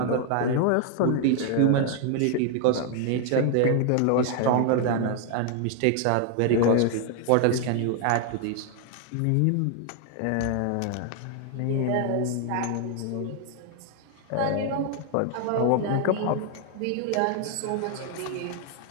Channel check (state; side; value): different; both; correlation 0.00